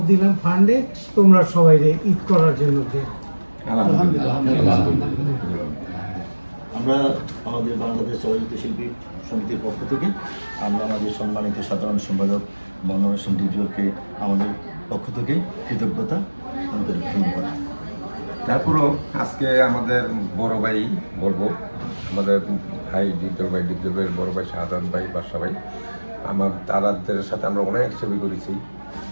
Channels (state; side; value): inverted; both; correlation -1.00